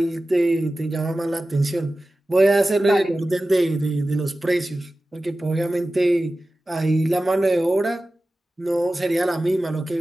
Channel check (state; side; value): normal; both; correlation 0.95